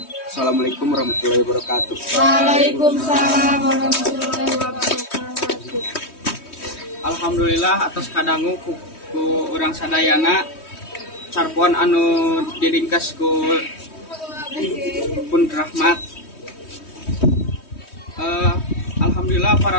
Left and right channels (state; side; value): late; right; 3.2 ms